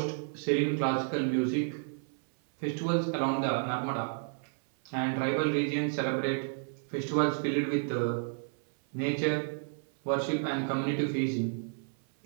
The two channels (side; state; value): left; silent; 57 dB below the other